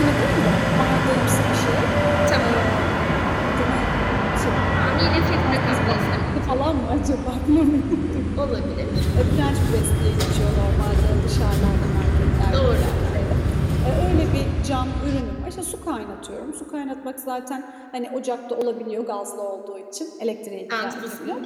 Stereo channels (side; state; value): both; identical; correlation 1.00